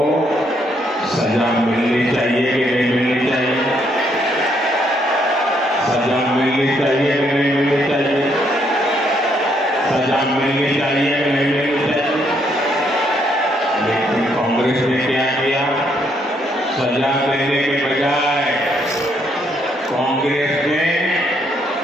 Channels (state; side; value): normal; both; correlation 0.72